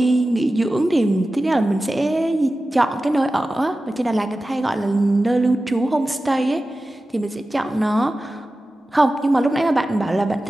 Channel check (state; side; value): normal; both; correlation 0.95